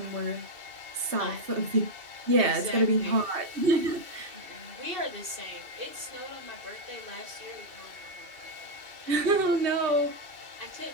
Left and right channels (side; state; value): left; late; 2.7 ms